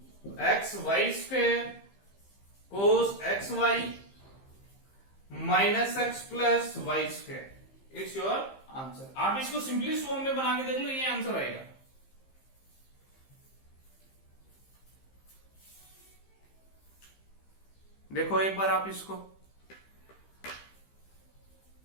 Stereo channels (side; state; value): right; late; 15 ms